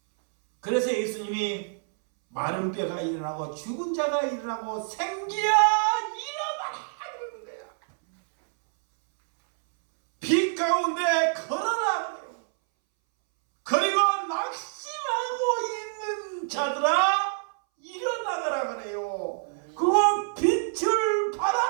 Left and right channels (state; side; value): silent; left; 60 dB below the other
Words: 그래서 예수님이 마른 뼈가 일어나고 죽은 자가 일어나고 생기야 일어나라 그러는 거야. 빛 가운데 걸어라 그래요. 그리고 낙심하고 있는 자들아 일어나가라 그래요. 그거 빛을